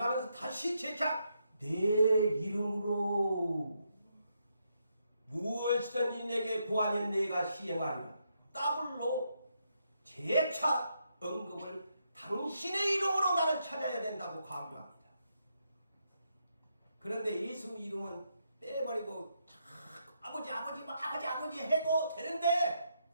다시 재차 내 이름으로 무엇이든지 내게 구하면 내가 시행하리라. 더블로 재차 언급을 당신의 이름으로 나를 찾아야 된다고 강조합니다. 그런데 예수 이름은 빼버리고 아버지 해도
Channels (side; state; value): both; inverted; correlation -0.79